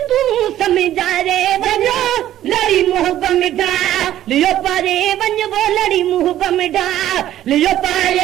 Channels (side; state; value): left; quieter; 12.7 dB